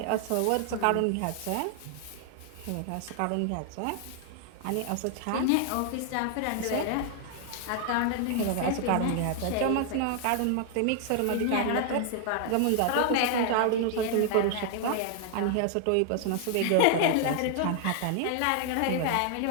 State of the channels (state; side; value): different; both; correlation 0.00